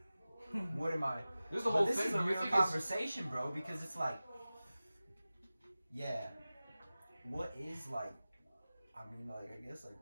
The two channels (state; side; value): inverted; both; correlation -0.97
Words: what am I? This is the whole thing. This is a real conversation, bro, because it's like, yeah, what is like? I mean, like, I guess like,